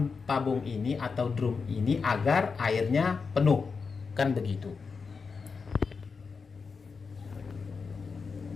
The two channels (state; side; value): quieter; right; 5.1 dB